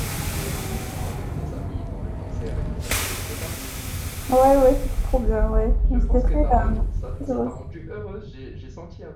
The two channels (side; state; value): both; identical; correlation 1.00